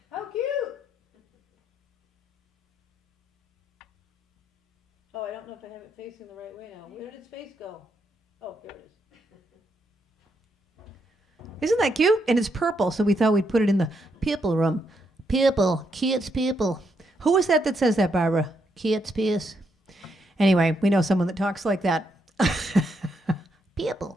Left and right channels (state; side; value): normal; both; correlation 0.78